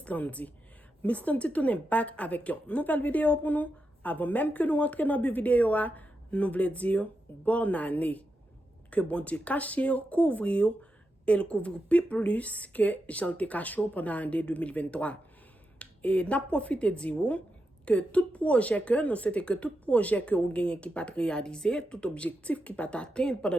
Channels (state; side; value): normal; both; correlation 0.87